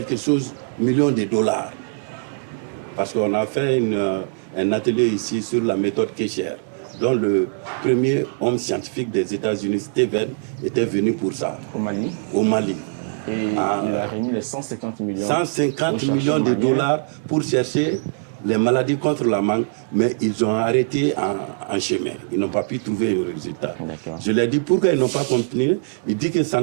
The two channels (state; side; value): silent; left; digital silence